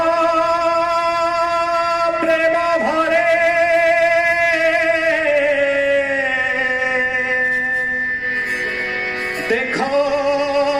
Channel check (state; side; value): noise; right; rumble, 21 dB below the sound